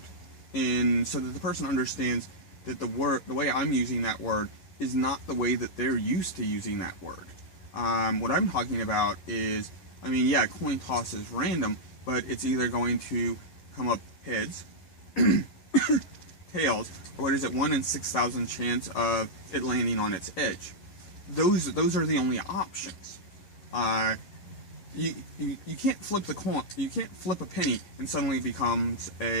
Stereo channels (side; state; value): right; late; 11 ms